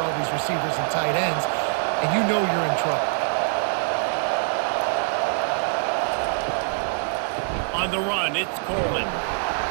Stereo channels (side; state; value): left; silent; 60 dB below the other